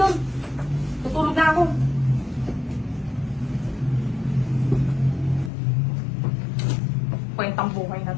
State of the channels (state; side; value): drops out; right; at 5.5 s